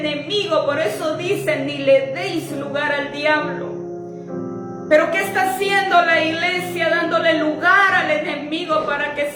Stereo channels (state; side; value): identical; both; correlation 1.00